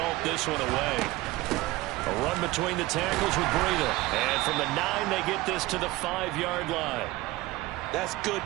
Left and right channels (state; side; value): quieter; left; 19.3 dB